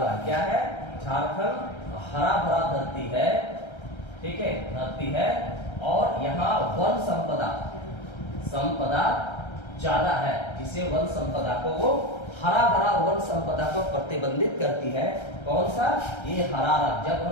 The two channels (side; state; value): right; late; 1.3 ms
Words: क्या है? झारखंड हरा भरा धरती है। ठीक है, धरती है और यहाँ वन संपदा ज्यादा है, जिसे वन संपदा को वो हरा भरा वन संपदा को प्रतिबंधित करती है। कौन सा? ये हरा रंग। जब